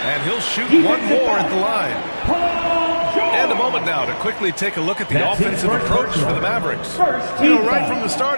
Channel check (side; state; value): both; inverted; correlation -1.00